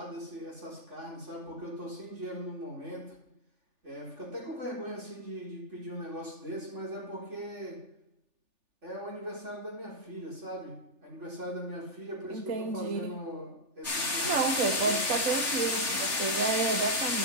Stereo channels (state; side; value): late; left; 3.4 ms